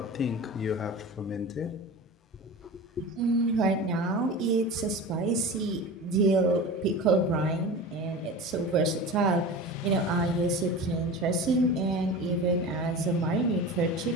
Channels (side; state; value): both; normal; correlation 0.32